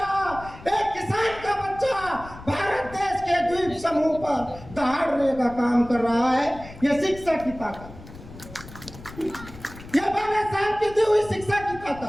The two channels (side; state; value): left; noise; rumble, 16 dB below the sound